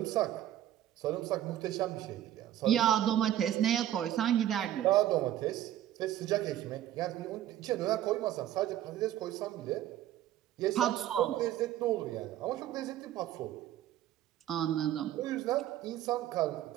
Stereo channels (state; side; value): quieter; left; 12.5 dB